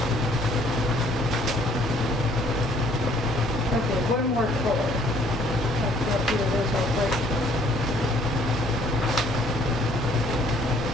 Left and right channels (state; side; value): normal; both; correlation 0.61